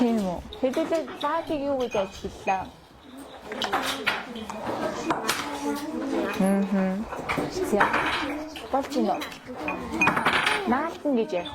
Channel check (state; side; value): identical; both; correlation 1.00